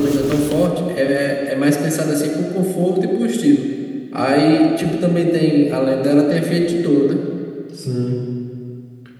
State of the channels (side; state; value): both; identical; correlation 1.00